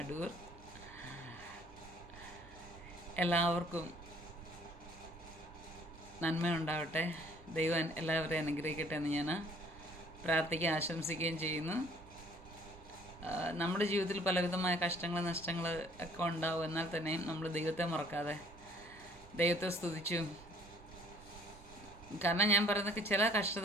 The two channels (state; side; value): normal; both; correlation 0.57